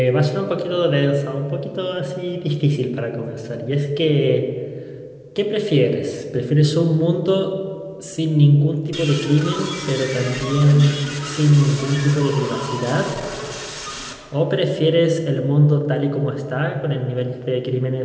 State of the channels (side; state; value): both; identical; correlation 1.00